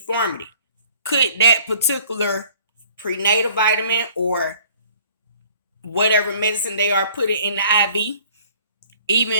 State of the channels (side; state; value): both; inverted; correlation -0.56